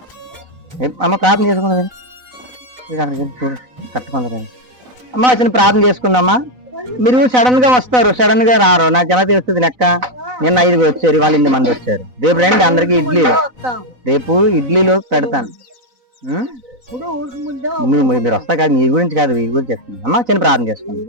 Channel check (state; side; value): late; left; 4.0 ms